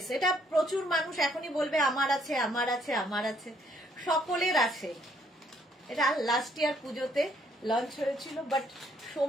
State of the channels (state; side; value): normal; both; correlation 0.67